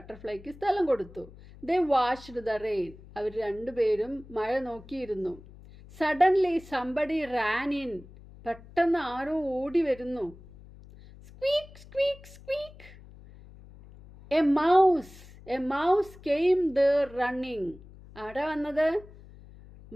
സ്ഥലം കൊടുത്തു. They washed the rain. അവർ രണ്ടുപേരും മഴ നോക്കിയിരുന്നു. Suddenly somebody ran in. പെട്ടെന്ന് ആരോ ഓടി വരുന്നു. Squeak squeak squeak. A mouse came there running. ആരാ വന്നത്?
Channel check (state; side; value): noise; left; hum, 20 dB below the sound